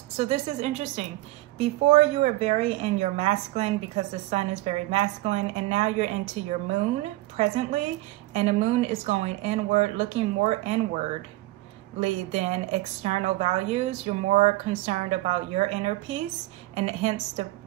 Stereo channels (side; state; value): left; quieter; 18.5 dB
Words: So this is interesting. Before you were very in your masculine because the sun is very masculine, and now you're into your moon presently, and the moon is going inward, looking more inwardly than external values. You're more concerned about your inner peace, and hence the